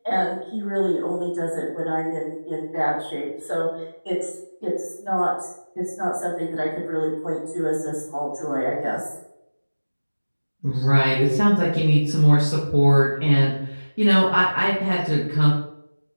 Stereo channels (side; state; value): both; inverted; correlation -1.00